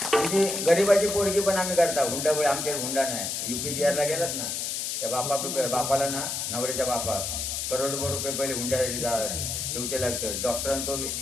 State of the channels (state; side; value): noise; left; hiss, 2 dB below the sound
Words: आमची गरीबाची पोरगी पण आम्ही करता हुंडामुळे आमच्या हुंडा नाही. UP बिहारला गेलात ना त्या बापाला ना नवऱ्याच्या बापा करोडभर रुपये पहिले हुंड्यासाठी ठेवचे लागतं. डॉक्टरांचा